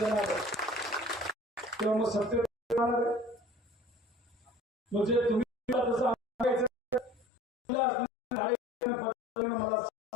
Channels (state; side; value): drops out; right; at 7.2 s